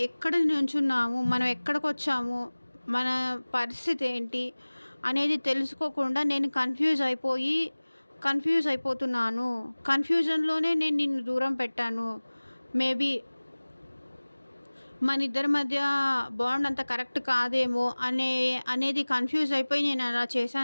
ఎక్కడ నుంచున్నాము, మనం ఎక్కడికి వచ్చాము, మన పరిస్థితి ఏంటి అనేది తెలుసుకోకుండా నేను కన్ఫ్యూజ్ అయిపోతున్నాను. కన్ఫ్యూజన్లోనే నేను నిన్ను దూరం పెట్టాను. మేబీ మన ఇద్దరి మధ్య బాండ్ అంత కరెక్ట్ కాదేమో అనేది కన్ఫ్యూజ్ అయిపోయి నేను అలా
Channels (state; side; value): inverted; both; correlation -1.00